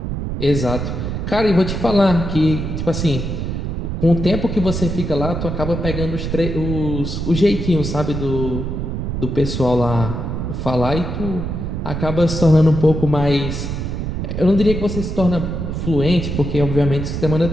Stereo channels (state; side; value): noise; right; rumble, 3 dB below the sound